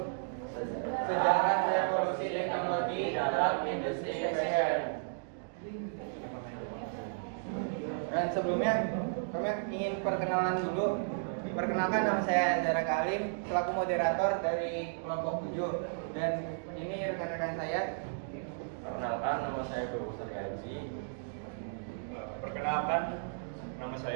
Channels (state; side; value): silent; left; digital silence